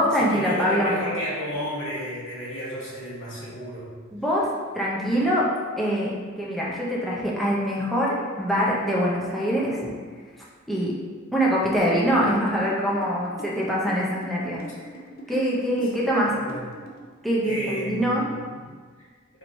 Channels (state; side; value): normal; both; correlation 0.44